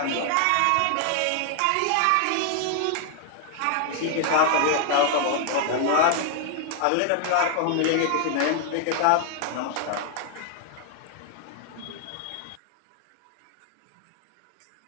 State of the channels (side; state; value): both; different; correlation 0.00